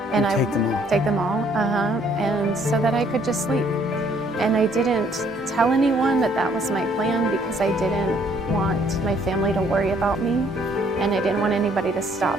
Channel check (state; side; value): normal; both; correlation 0.64